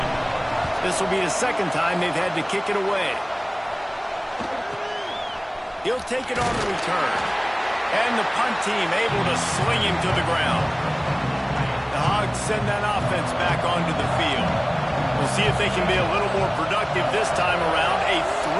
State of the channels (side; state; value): both; identical; correlation 1.00